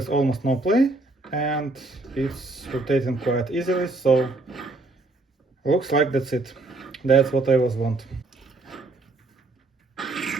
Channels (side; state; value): left; quieter; 3.1 dB